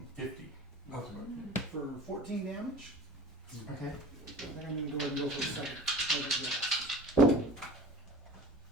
for 14 damage. Okay. They're going to go ahead and go for the second Elder Blast.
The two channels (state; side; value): normal; both; correlation 0.41